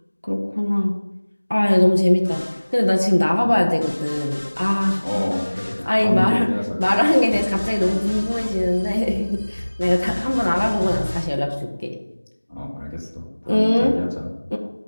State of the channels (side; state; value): both; inverted; correlation -1.00